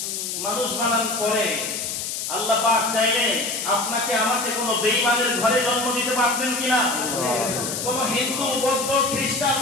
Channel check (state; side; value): noise; left; hiss, 4 dB below the sound